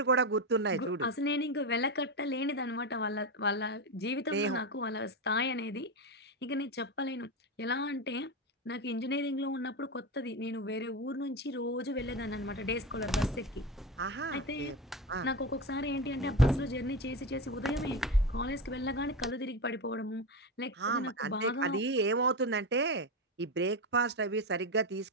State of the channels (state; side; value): normal; both; correlation 0.18